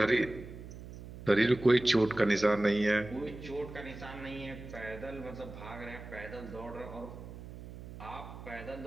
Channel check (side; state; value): right; noise; hum, 13 dB below the sound